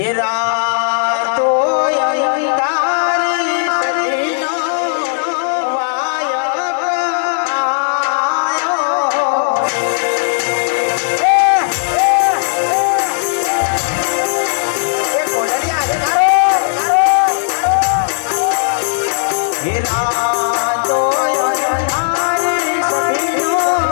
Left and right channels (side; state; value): right; silent; digital silence